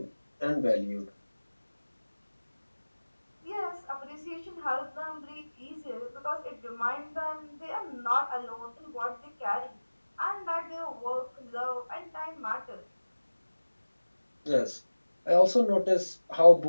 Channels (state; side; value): inverted; both; correlation -1.00